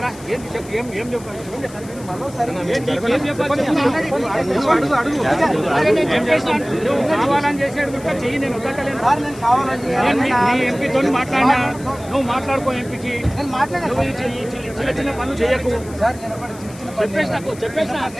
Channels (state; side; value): noise; left; hiss, 20 dB below the sound